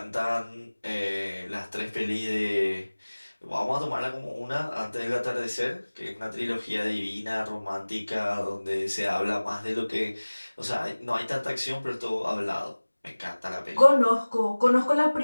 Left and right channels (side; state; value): both; inverted; correlation -1.00